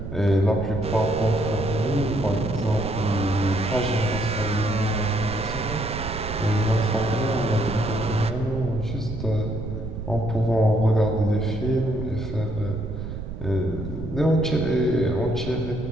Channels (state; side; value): noise; right; rumble, 8 dB below the sound